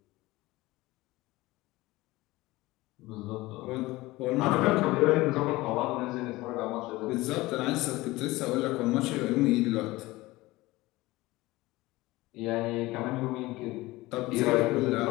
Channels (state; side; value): quieter; right; 19.6 dB